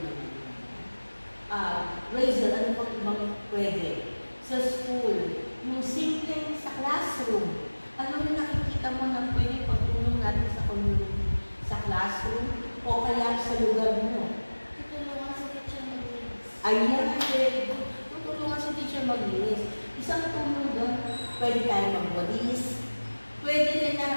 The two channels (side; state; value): both; inverted; correlation -1.00